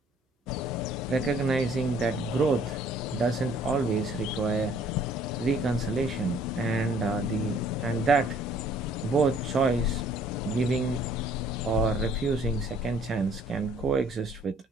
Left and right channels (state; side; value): normal; both; correlation 0.59